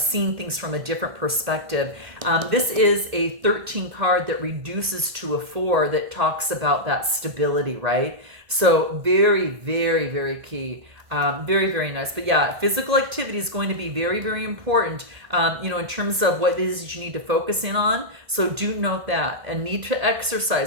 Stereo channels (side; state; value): left; late; 1.8 ms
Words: things from a different perspective. This is a 13 card that reduces to a 4 that talks about that stability, right? So very, very, very key. Very, very nice. But yeah, physical activity is going to be very, very important, in terms of what it is that you need to focus in on. So do note that, and need to